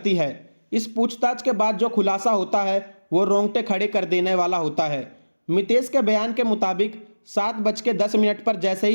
है। इस पूछताछ के बाद जो खुलासा होता है वो रोंगटे खड़े कर देने वाला होता है। मितेश के बयान के मुताबिक 7:10 पर जैसे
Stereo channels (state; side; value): inverted; both; correlation -1.00